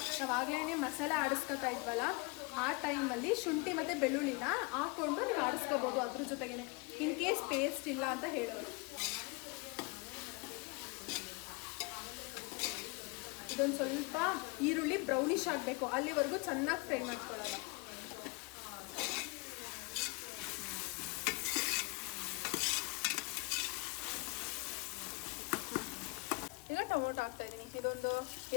ನಾವಾಗಲೇ ಮಸಾಲೆ ಆಡಿಸ್ಕೊತಾ ಇದ್ವಲ್ಲ, ಆ ಟೈಮಲ್ಲಿ ಶುಂಠಿ ಮತ್ತು ಬೆಳ್ಳುಳ್ಳಿನ ಹಾಕ್ಕೊಂಡು ನೀವು ಆಡಿಸ್ಕೋಬೋದು ಅದ್ರ ಜೊತೆಗೇ. ಇನ್ ಕೇಸ್ ಪೇಸ್ಟ್ ಇಲ್ಲ ಅಂತ ಹೇಳೋರು. ಇದೊಂದು ಸ್ವಲ್ಪ ಈರುಳ್ಳಿ ಬ್ರೌನಿಶ್ ಆಗಬೇಕು, ಅಲ್ಲಿವರೆಗೂ ಚೆನ್ನಾಗಿ ಫ್ರೈ ಮಾಡ್ಕೊಳ್ಳೋಣ. ಈಗ ಟೊಮೊಟೊ ಹಾಕ್ತಾ ಇದ್ದೀನಿ. ಇದೊಂದು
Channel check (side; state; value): right; quieter; 28.3 dB